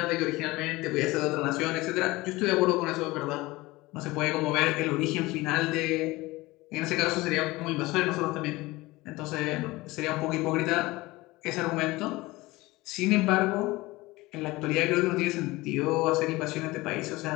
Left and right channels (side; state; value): right; quieter; 20.6 dB